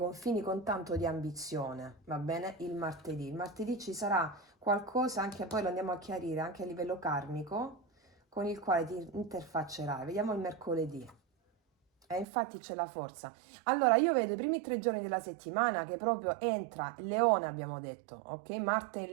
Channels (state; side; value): drops out; left; at 12.2 s